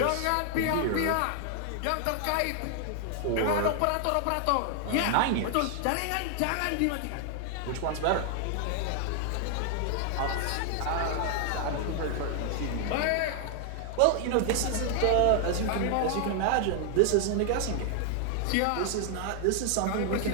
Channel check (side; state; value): both; different; correlation 0.00